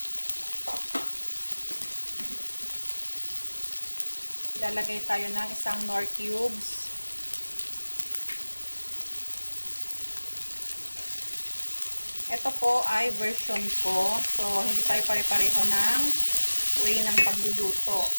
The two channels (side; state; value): both; inverted; correlation -1.00